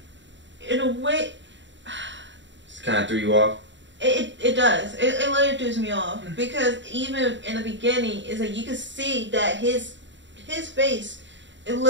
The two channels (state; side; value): late; left; 0.53 ms